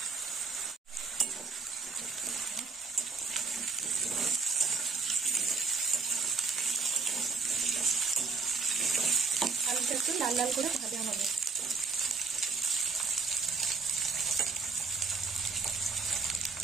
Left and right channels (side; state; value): left; quieter; 4.5 dB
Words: আলুটা একটু লাল লাল করে ভাজা হবে।